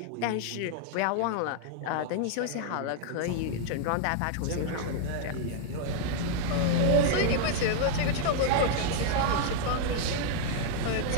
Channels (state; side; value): different; both; correlation -0.01